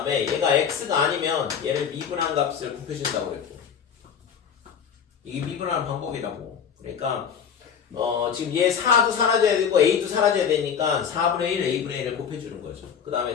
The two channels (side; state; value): right; quieter; 7.4 dB